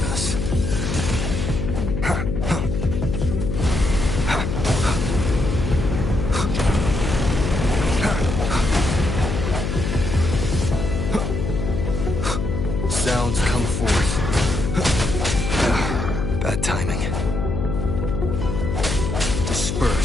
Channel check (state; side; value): noise; left; hum, 2 dB below the sound